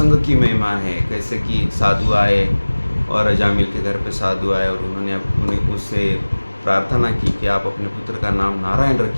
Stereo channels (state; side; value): inverted; both; correlation -1.00